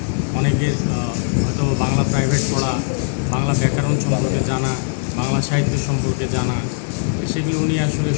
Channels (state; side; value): silent; right; digital silence